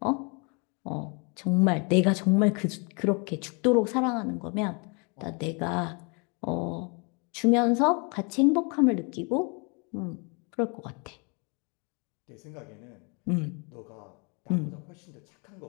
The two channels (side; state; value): right; quieter; 33.6 dB